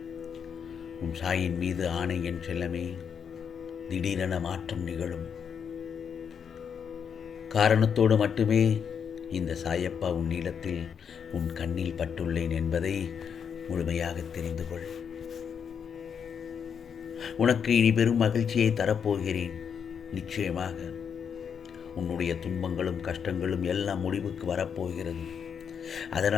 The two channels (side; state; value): right; quieter; 7.2 dB